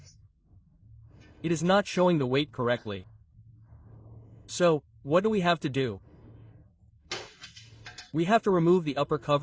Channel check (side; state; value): both; identical; correlation 1.00